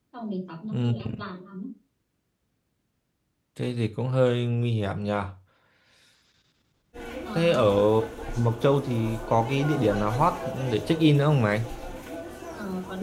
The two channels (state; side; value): identical; both; correlation 1.00